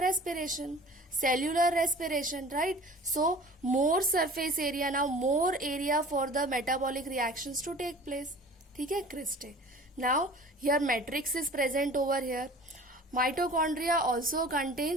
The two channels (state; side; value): normal; both; correlation 0.44